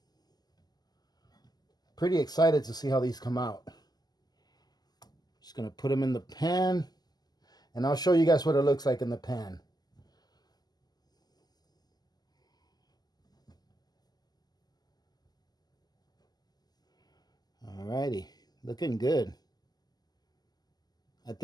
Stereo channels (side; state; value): right; late; 0.20 ms